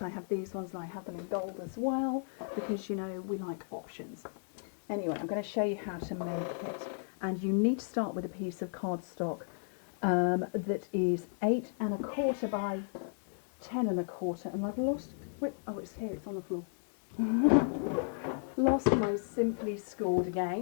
I have these ones and I have them in gold as well, because you know, we like options. Anyway, I'm going to show you how to make it. And you need to start with a piece of cardstock that is 8 1/4 by 10 1/4, and I've lost, oh, it's here, it's on the floor. Lost my Simply Scored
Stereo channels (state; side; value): silent; right; digital silence